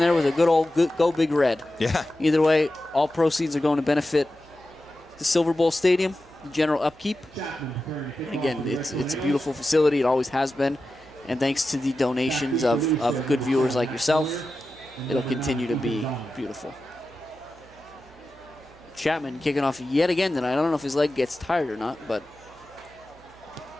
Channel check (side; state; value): right; noise; hum, 26 dB below the sound